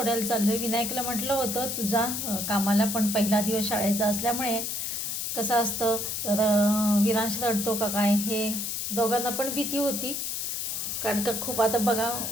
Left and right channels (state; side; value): noise; left; hiss, 2 dB below the sound